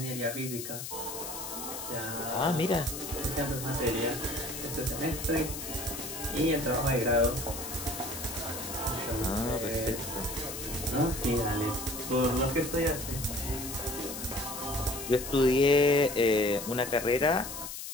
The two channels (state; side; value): noise; left; hiss, 8 dB below the sound